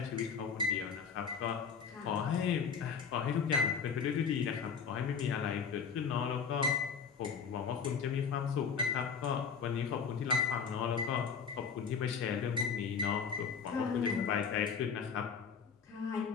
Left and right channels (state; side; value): quieter; right; 6.2 dB